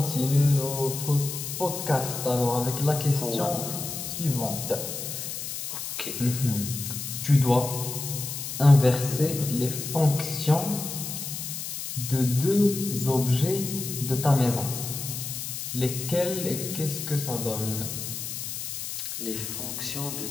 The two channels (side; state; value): left; noise; hiss, 6 dB below the sound